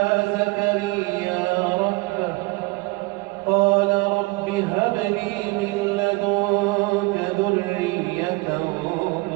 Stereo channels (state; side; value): quieter; left; 24.9 dB